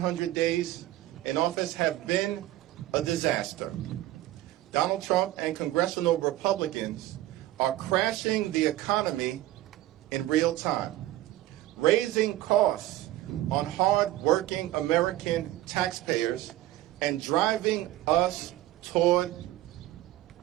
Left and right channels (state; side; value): quieter; left; 15.3 dB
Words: days in office have been a disaster. Donald Trump and congressional Republicans are crashing the economy in real time, raising costs on hard-working American taxpayers and driving us toward